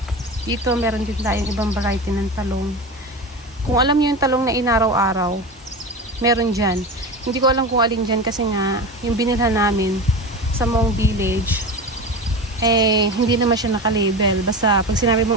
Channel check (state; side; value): normal; both; correlation 0.26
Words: Dito meron din tayong ibang variety ng talong. Kung alam niyo yung talong na inaraw-araw, meron dyan. Hindi ko alam kung alin dyan kasi nga, yung binilhan namin sa Mong Village, hindi naman siya naka-label. Basta, pag sinabi